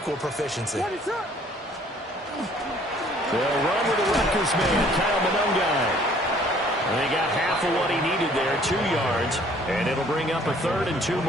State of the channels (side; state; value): both; normal; correlation 0.58